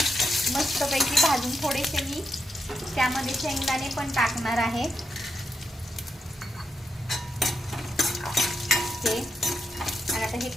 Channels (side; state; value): both; normal; correlation 0.84